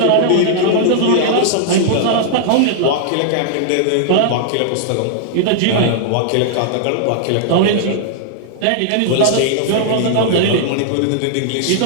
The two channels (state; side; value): different; both; correlation -0.01